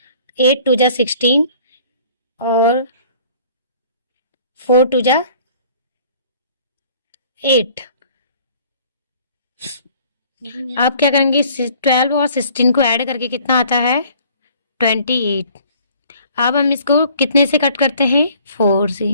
8 2 जा 16 और 4 2 जा 8। आप क्या करेंगे, 12 और 16 को ऐड करके कितना आता है 28। अब हम इसको कितने से कट करते हैं, 4 से।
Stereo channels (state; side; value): inverted; both; correlation -0.55